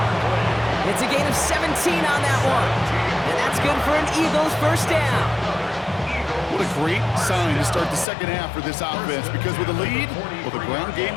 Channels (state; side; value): drops out; right; at 8.1 s